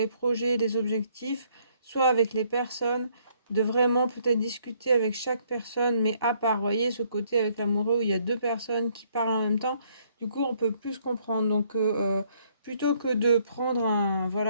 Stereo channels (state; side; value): inverted; both; correlation -0.67